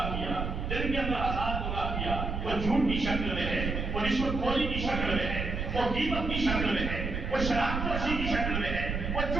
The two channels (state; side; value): noise; right; rumble, 3 dB below the sound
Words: کیا، دن کے اندر 1000 گناہ کیا، وہ جھوٹ کی شکل میں ہے، وہ رشوت خوری کی شکل میں ہے، وہ غیبت کی شکل میں ہے، وہ شراب نوشی کی شکل میں ہے، وہ